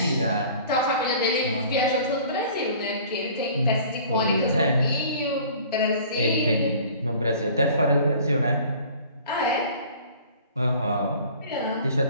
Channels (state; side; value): inverted; both; correlation -0.48